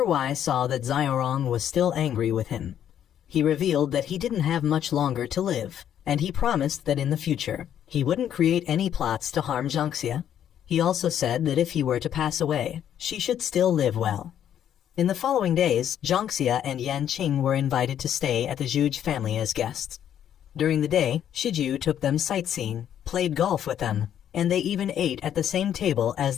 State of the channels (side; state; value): right; quieter; 10.0 dB